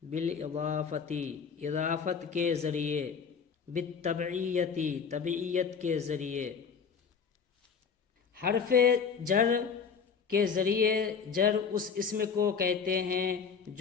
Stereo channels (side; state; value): right; quieter; 6.1 dB